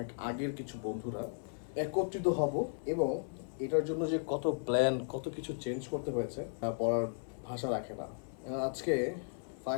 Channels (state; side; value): silent; right; 54 dB below the other